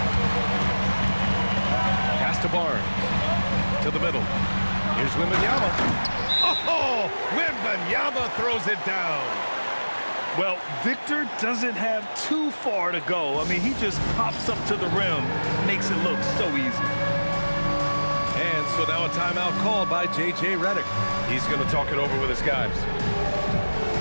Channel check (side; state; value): both; inverted; correlation -1.00